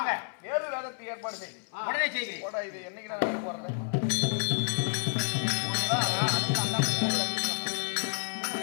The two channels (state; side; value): silent; right; 58 dB below the other